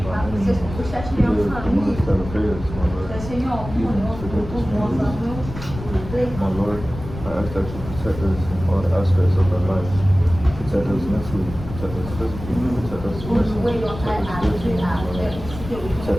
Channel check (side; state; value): left; noise; rumble, 11 dB below the sound